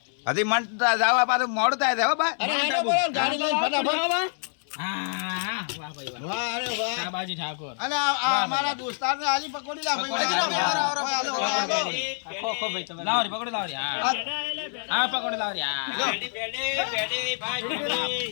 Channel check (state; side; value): silent; right; 61 dB below the other